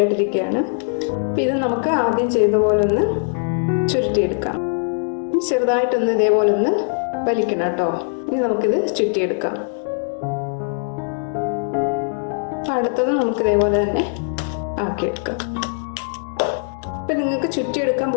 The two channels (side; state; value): right; silent; digital silence